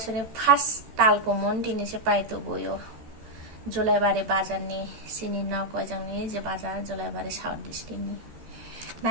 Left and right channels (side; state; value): left; late; 13 ms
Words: first talkomon tini se paito boyo Jolaibari bajarni sini na kojangni je bajar Jolaibari South District ni